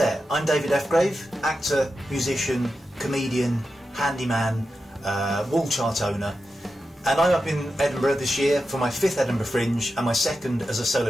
I'm David Ephgrave, actor, musician, comedian, handyman, wall chart owner, and I'm up in Edinburgh this year for my 5th Edinburgh Fringe and my 2nd as a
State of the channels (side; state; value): both; normal; correlation 0.90